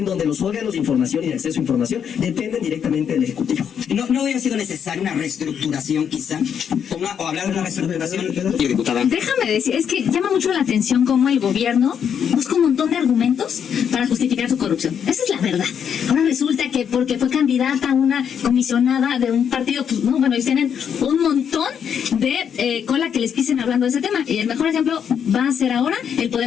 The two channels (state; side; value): quieter; right; 8.0 dB